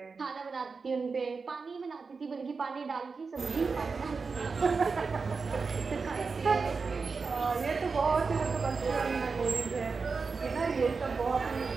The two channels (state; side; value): quieter; left; 4.7 dB